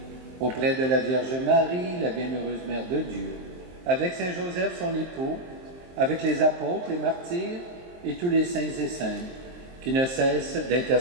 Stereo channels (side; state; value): left; late; 23 ms